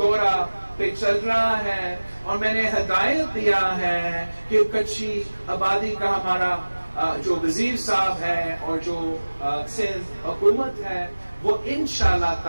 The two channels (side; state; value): both; inverted; correlation -1.00